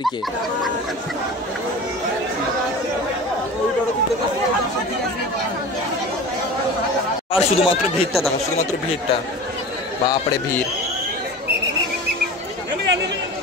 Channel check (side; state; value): both; normal; correlation 0.34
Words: আর শুধুমাত্র ভিড়টা দেখো, শুধুমাত্র ভিড়টা। বাপরে ভিড়,